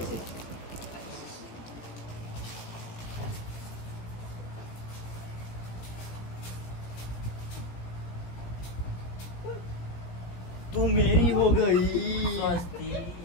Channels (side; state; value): right; late; 17 ms